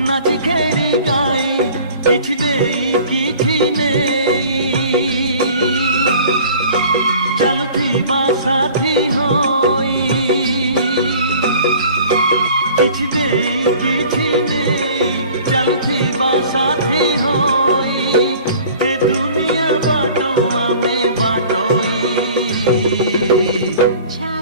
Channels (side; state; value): both; inverted; correlation -0.47